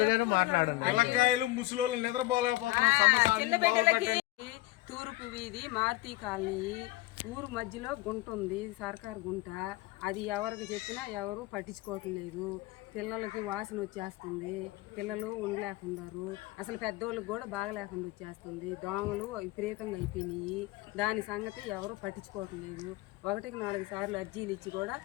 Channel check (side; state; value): right; quieter; 18.7 dB